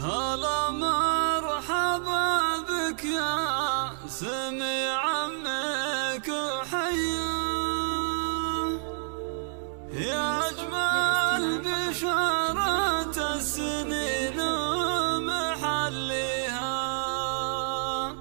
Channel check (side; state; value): left; silent; 59 dB below the other